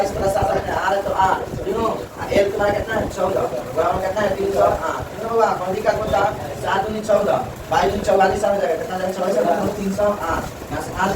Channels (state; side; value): identical; both; correlation 1.00